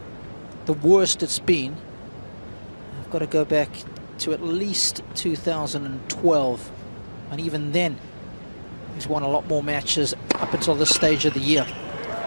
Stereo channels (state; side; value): inverted; both; correlation -1.00